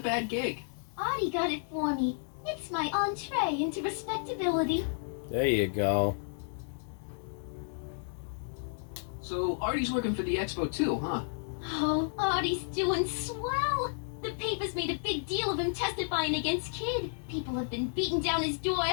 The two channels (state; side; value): silent; right; digital silence